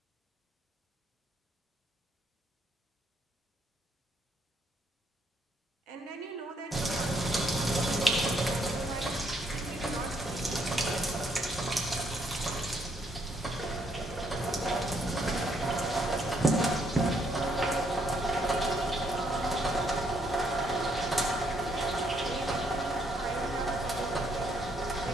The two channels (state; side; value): normal; both; correlation 0.71